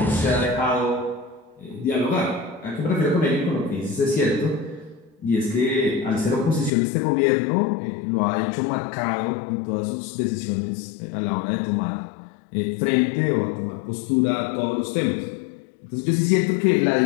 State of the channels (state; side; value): drops out; right; at 6.7 s